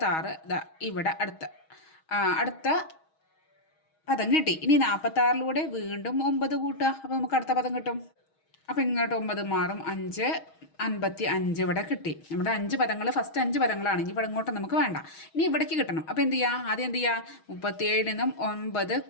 ഇവിടെ അടുത്ത പദം കിട്ടി. ഇനി 46ലൂടെ വീണ്ടും 9 കൂട്ടുക. അപ്പോൾ നമുക്ക് അടുത്ത പദം കിട്ടും. അപ്പോൾ ഇങ്ങോട്ട് 9 മാറും. 5 55 ഇവിടെ കിട്ടി. നമ്മുടെ 5 പദങ്ങൾ, ഫസ്റ്റ് 5 പദങ്ങളാണ്. ഇനി ഇവിടെ ഇങ്ങോട്ട് നമുക്ക് വേണ്ട. ഇനി ഇവിടേക്ക് കിട്ടണം. അപ്പോൾ എന്ത് ചെയ്യുക? ആദ്യം എന്ത് ചെയ്യുക? 37 നിന്നും 9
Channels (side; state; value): right; late; 6.3 ms